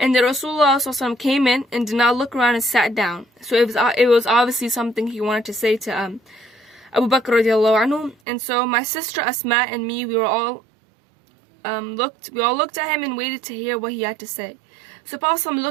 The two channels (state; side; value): drops out; left; at 8.2 s